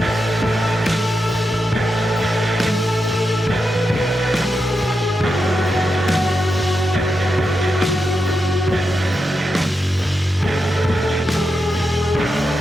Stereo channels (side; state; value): both; normal; correlation 0.87